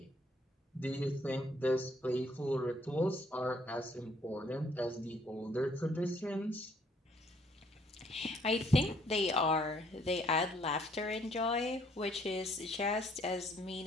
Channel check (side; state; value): both; normal; correlation 0.65